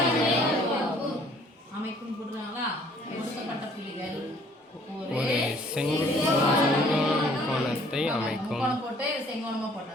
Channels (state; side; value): normal; both; correlation 0.58